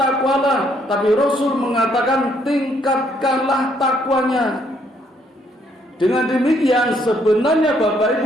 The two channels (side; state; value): both; normal; correlation 0.69